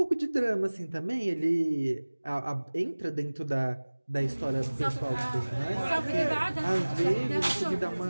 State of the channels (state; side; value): inverted; both; correlation -1.00